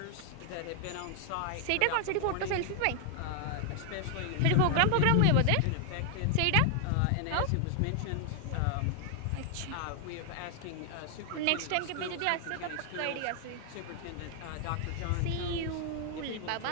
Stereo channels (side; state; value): both; different; correlation 0.00